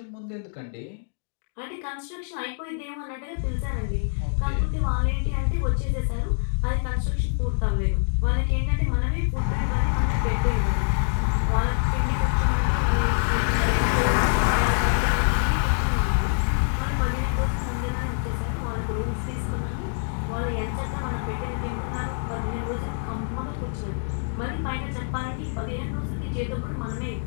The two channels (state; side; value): silent; right; digital silence